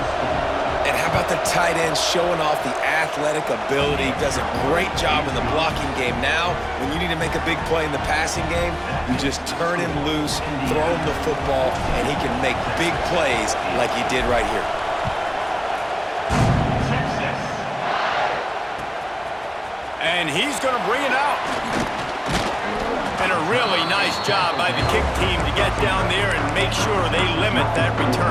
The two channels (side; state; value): both; identical; correlation 1.00